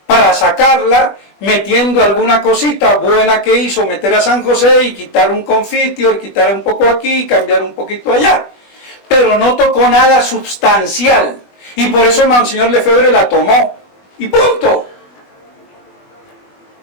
para sacarla, metiendo alguna cosita buena que hizo, meter a San José y quitar un confitior, quitar un poco aquí, cambiar un poquito allá. Pero no tocó nada substancial. Y por eso Monseñor Lefebvre la tomó. Y punto.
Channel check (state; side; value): late; right; 20 ms